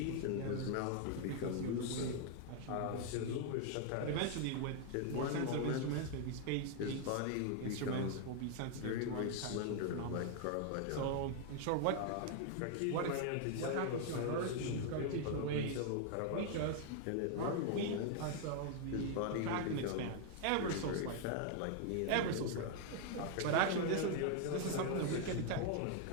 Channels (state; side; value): different; both; correlation 0.00